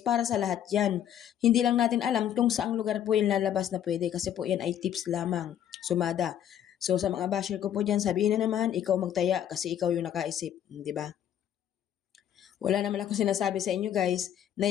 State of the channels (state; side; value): quieter; right; 10.3 dB